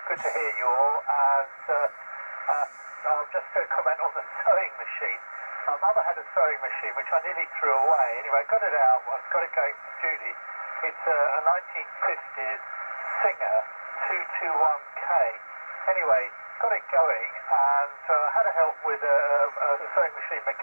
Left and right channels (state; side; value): inverted; both; correlation -1.00